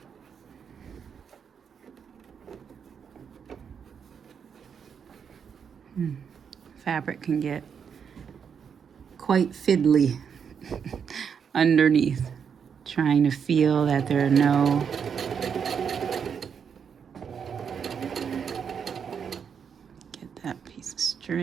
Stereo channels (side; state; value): left; quieter; 7.0 dB